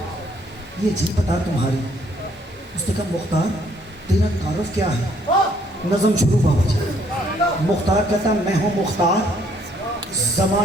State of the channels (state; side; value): normal; both; correlation 0.66